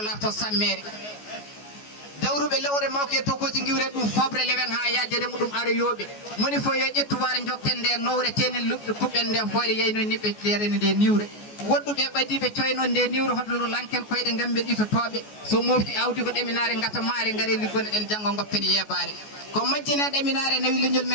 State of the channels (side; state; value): right; late; 14 ms